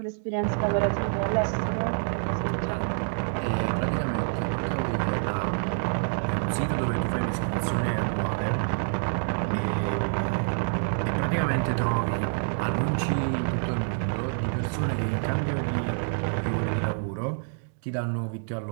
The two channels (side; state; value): left; silent; digital silence